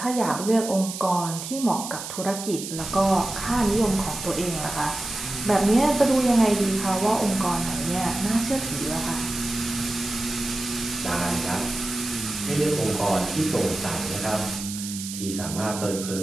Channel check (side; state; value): right; noise; hiss, 8 dB below the sound